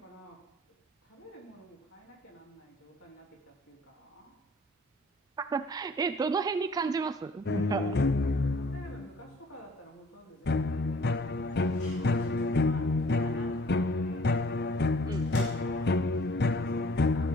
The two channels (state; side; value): normal; both; correlation 0.55